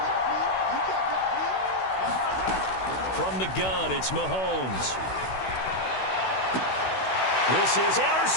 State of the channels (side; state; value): right; late; 16 ms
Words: From the gun, it's Mahomes. This is